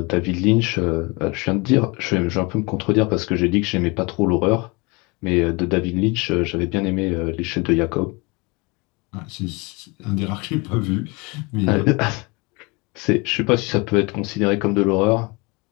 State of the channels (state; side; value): quieter; right; 27.2 dB